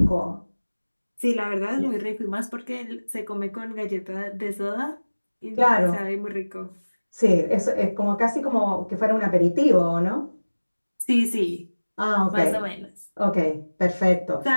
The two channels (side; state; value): both; inverted; correlation -1.00